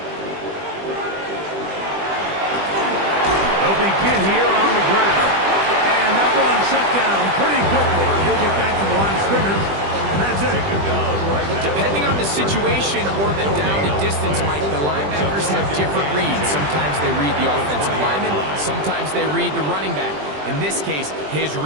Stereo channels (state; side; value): late; left; 20 ms